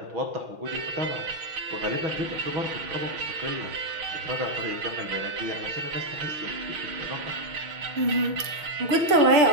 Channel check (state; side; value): late; left; 6.1 ms